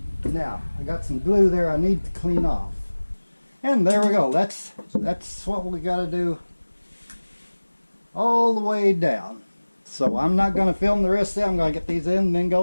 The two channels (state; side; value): inverted; both; correlation -1.00